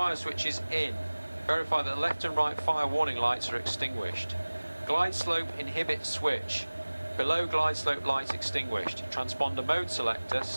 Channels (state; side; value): inverted; both; correlation -1.00